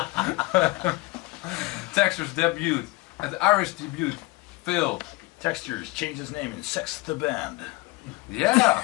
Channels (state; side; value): quieter; right; 23.1 dB